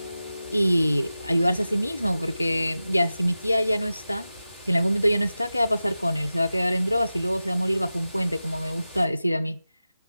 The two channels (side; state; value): both; inverted; correlation -0.95